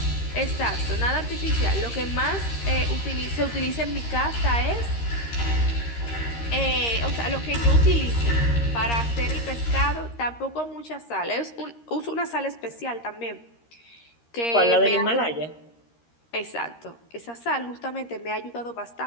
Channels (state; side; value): late; right; 13 ms